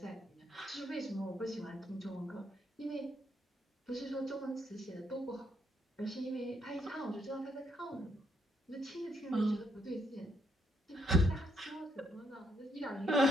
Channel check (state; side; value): normal; both; correlation 0.74